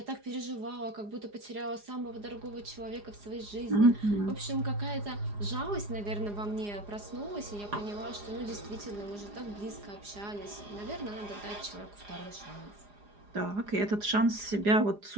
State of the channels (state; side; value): late; left; 4.9 ms